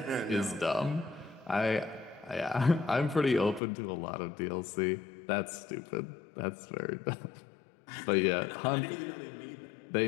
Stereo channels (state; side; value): drops out; right; at 3.6 s